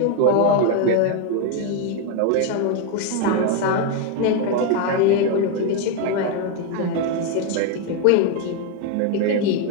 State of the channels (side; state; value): both; different; correlation 0.01